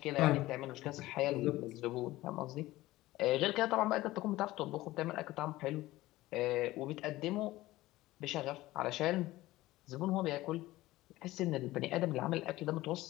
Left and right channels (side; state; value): right; quieter; 17.5 dB